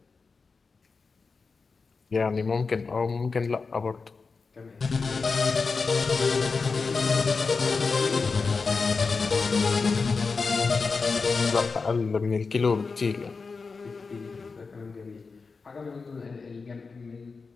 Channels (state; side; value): quieter; right; 4.6 dB